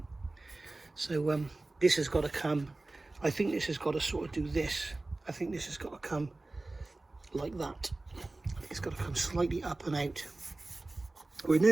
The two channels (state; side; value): quieter; left; 3.0 dB